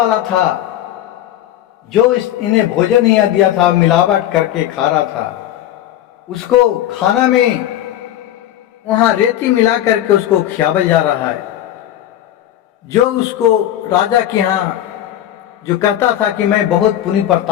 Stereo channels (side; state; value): right; quieter; 12.3 dB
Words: था, जो इन्हें भोजन नहीं दिया था, मिलावट करके खा रहा था, उसको खाना में वहां रेती मिला करके उसको खियावल जा रहा है। जो उसको राजा के यहाँ जो कहता था कि मैं बहुत पुण्य